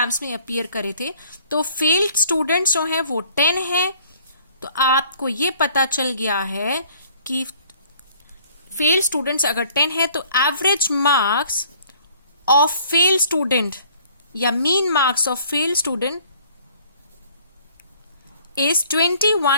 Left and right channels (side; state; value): both; inverted; correlation -0.57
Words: में अपीयर करे थे, तो फेल्ड स्टूडेंट्स जो हैं वो 10 हैं. तो आपको ये पता चल गया है कि फेल्ड स्टूडेंट्स अगर 10 है तो average marks of fail student या mean marks of fail student is